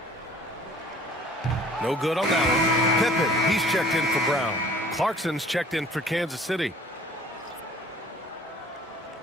No good on that one. Pippen, he's checked in for Brown. Clarkson's checked in for Kansas City.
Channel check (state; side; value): normal; both; correlation 0.52